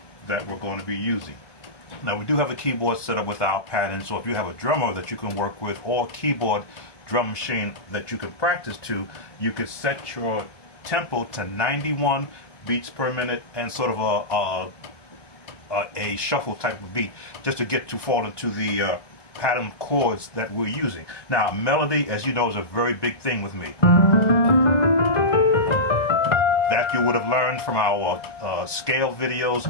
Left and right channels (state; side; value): late; right; 1.2 ms